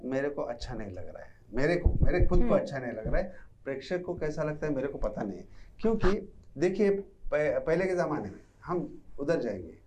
मेरे को अच्छा नहीं लग रहा है, मेरे खुद को अच्छा नहीं लग रहा है। प्रेक्षक को कैसा लगता है मेरे को पता नहीं है, क्योंकि देखिए पहले के ज़माने में हम उधर जाएंगे,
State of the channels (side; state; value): both; identical; correlation 1.00